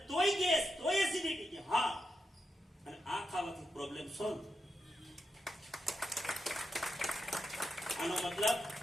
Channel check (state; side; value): normal; both; correlation 0.85